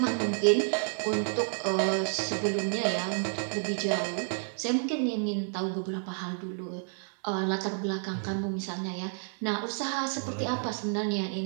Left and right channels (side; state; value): left; silent; 58 dB below the other